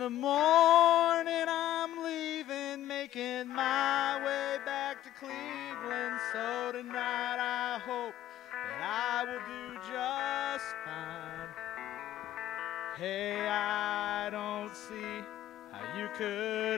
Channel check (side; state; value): right; quieter; 13.1 dB